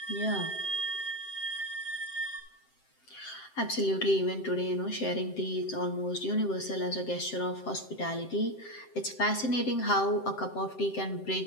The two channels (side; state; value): right; late; 7.7 ms